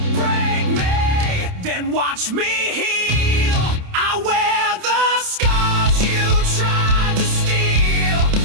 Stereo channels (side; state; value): left; late; 28 ms